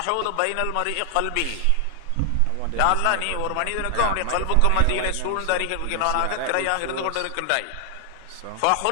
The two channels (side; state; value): both; different; correlation 0.00